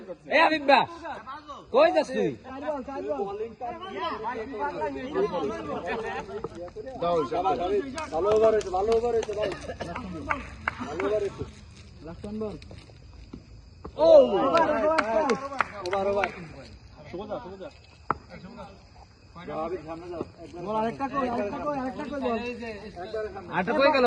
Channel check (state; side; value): identical; both; correlation 1.00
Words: কই যাস তুই আরেকটা কই গেল